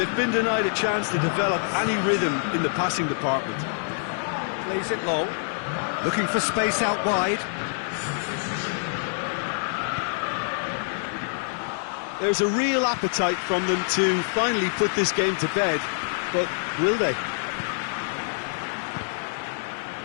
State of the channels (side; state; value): right; silent; digital silence